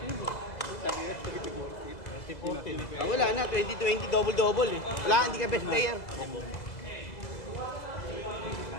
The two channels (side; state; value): right; late; 2.0 ms